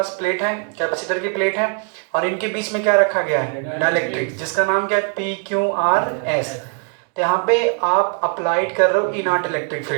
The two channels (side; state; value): left; quieter; 36.6 dB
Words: प्लेट है, कैपेसिटर की प्लेट है, और इनके बीच में क्या रखा गया है, डाइलेक्ट्रिक्स, जिसका नाम क्या है, पी क्यू आर एस। तो यहाँ पे आप अप्लाइड कर रहे हो ई नॉट इलेक्ट्रिक